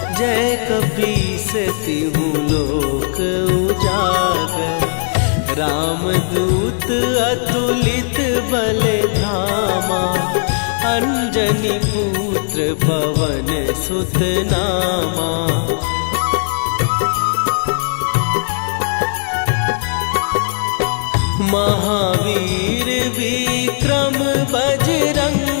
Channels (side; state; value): right; silent; 68 dB below the other